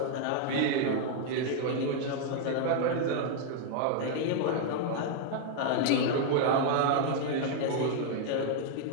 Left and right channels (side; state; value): both; different; correlation 0.00